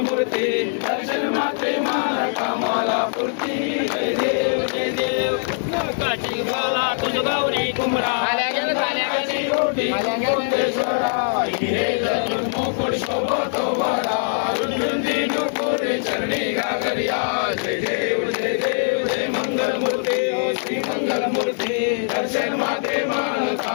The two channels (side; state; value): right; silent; digital silence